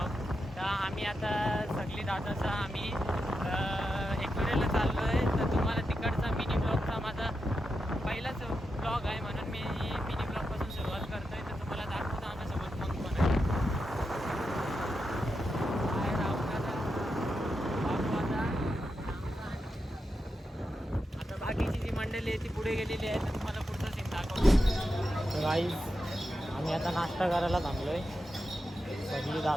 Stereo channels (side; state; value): both; normal; correlation 0.88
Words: तर आम्ही आता सगळी दादाचा आम्ही एकविरेला चाललो आहे. तर तुम्हाला तिकडचा मिनी ब्लॉगचा माझा पहिलाच ब्लॉग आहे, म्हणून मी मिनी ब्लॉगपासून सुरुवात करतो आहे. तर तुम्हाला दाखवतो आमच्यासोबत मग पण आहे. आता बाकीची जी मंडळी आहे ती पुढे गेलेली आहे. तर तुम्हाला पुढचा सीन दाखवतो. तर गाईस, आम्ही आता नाश्ता करायला थांबलो आहे सगळी